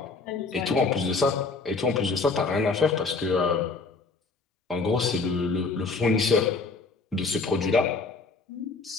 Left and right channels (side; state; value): right; quieter; 4.1 dB